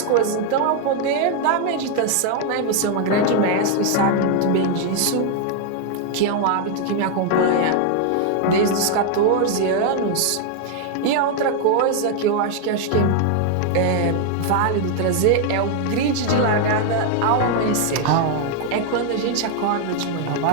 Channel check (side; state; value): both; different; correlation 0.00